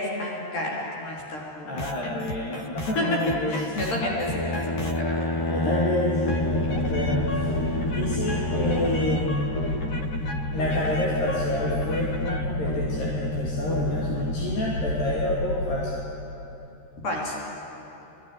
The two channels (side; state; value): right; late; 13 ms